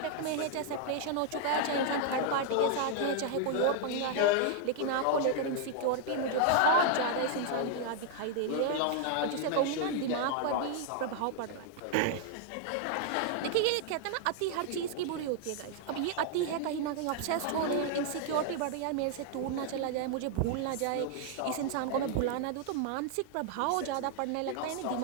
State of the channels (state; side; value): different; both; correlation 0.00